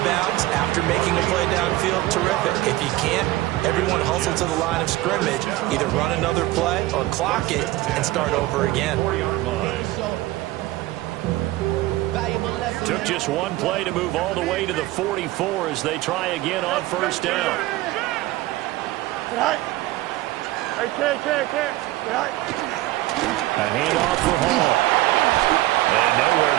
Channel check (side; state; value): left; quieter; 17.5 dB